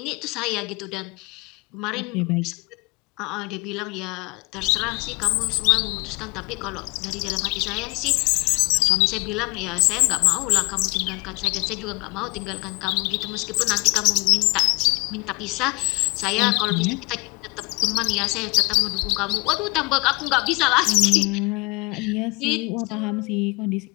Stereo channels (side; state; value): right; quieter; 27.5 dB